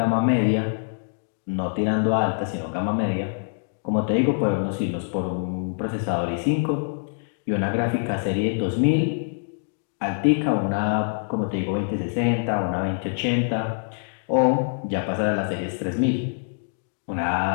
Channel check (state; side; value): silent; right; digital silence